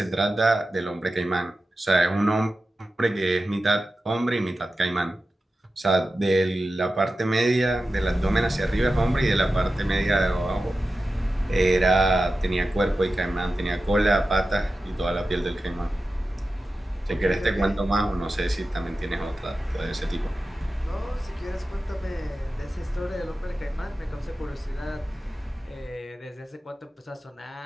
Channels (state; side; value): normal; both; correlation 0.93